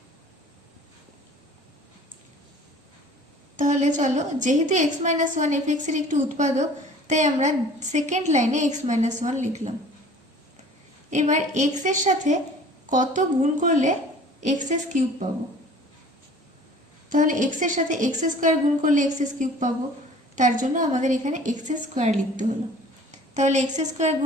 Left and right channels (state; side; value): normal; both; correlation 0.48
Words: তাহলে চলো, যেহেতু x - 1 f(x) এর একটি উৎপাদক, তাই আমরা সেকেন্ড লাইনে x - 1 লিখলাম। এবার x এর সাথে কত গুণ করলে x³ পাবো? তাহলে x এর সাথে x² গুণ করলে x³ পাবো, তার জন্য আমাদের এখানে x² লিখতে হলো। তাহলে x²